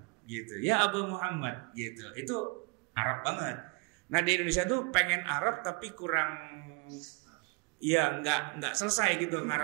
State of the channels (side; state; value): left; quieter; 27.5 dB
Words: gitu. Ya Abu Muhammad, gitu. Itu Arab banget. Nah, di Indonesia tuh pengen Arab tapi kurang, ya nggak selesai gitu